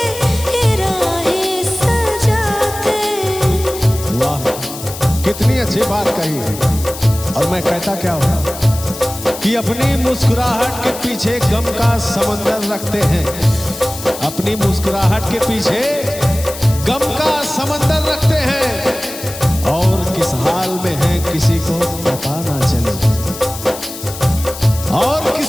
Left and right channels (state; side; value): noise; left; hiss, 11 dB below the sound